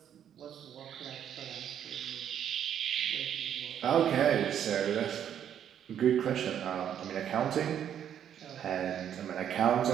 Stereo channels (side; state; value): left; quieter; 9.5 dB